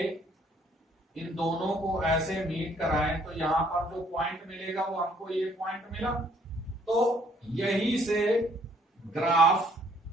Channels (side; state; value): both; normal; correlation 0.64